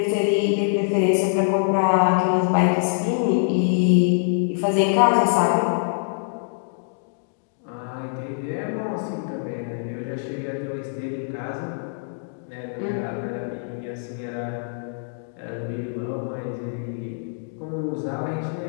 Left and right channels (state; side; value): silent; right; digital silence